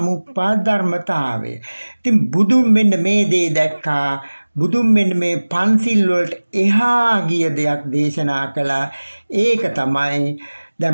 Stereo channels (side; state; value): both; inverted; correlation -1.00